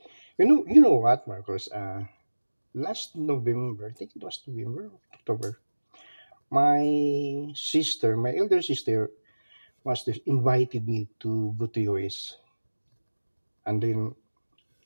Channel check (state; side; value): inverted; both; correlation -1.00